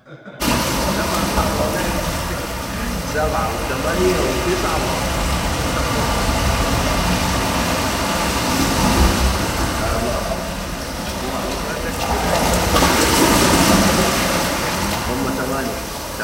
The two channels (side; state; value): both; identical; correlation 1.00